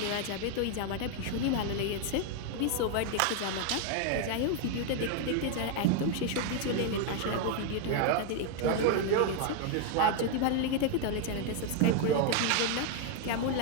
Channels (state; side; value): different; both; correlation 0.01